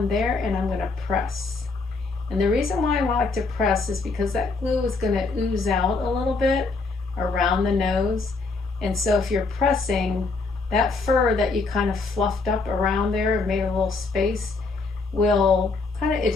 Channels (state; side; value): quieter; right; 4.0 dB